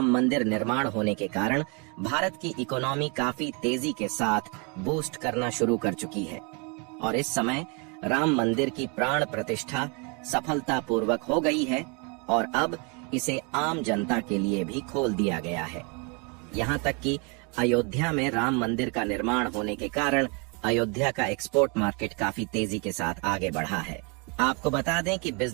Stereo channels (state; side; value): quieter; left; 33.1 dB